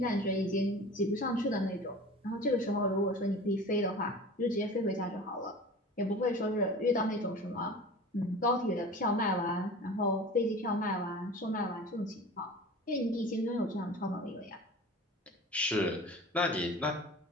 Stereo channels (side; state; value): both; normal; correlation 0.38